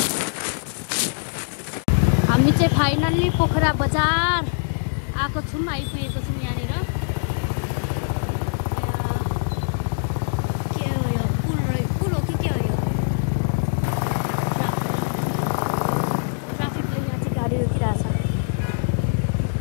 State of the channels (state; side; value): silent; right; digital silence